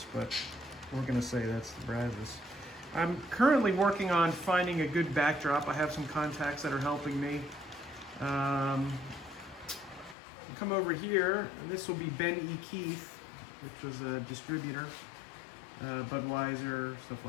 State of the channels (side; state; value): right; drops out; at 10.2 s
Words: but we're going to say that's the Brazos. I'm currently working on finding a good backdrop. I have some contacts that are helping me. Come over here, and this will be Ben E. Keith, which was a distributor, Budweiser, stuff